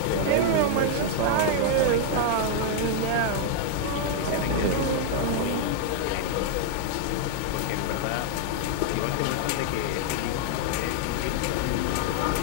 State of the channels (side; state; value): both; different; correlation -0.01